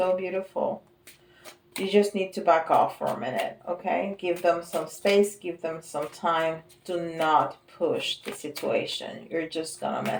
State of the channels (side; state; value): both; identical; correlation 1.00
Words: beautiful. You just need to back off for a minute, okay? Give them some space. Give them some time. Do not push the situation. You're just gonna